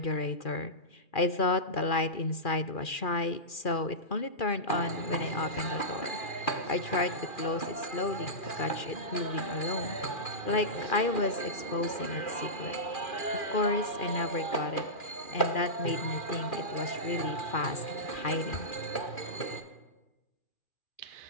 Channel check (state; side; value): late; right; 2.4 ms